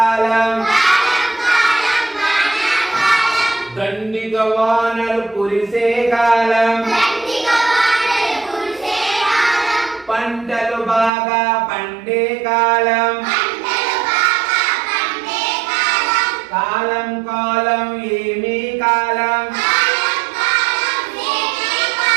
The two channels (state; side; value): drops out; left; at 11.1 s